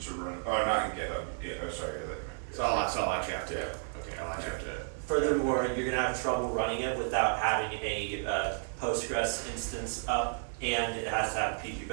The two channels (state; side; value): silent; left; digital silence